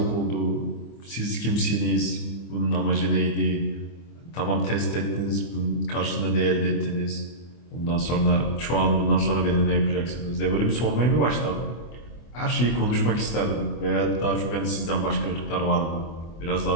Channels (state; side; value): late; right; 24 ms